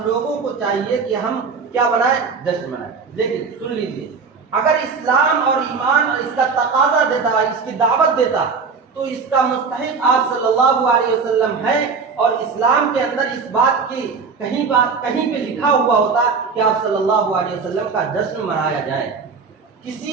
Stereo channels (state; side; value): quieter; left; 5.1 dB